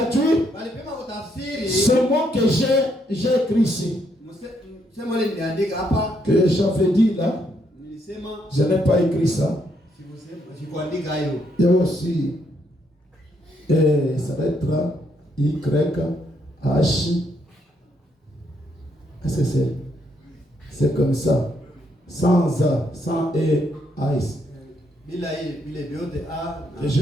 ce mot que j'ai écrit ici. Que j'avais dit là. Je n'ai pas écrit ça. Et aussi, ça va être Y-H. C'est comme ça. Sans A, sans E, A-S. Et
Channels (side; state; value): both; normal; correlation 0.74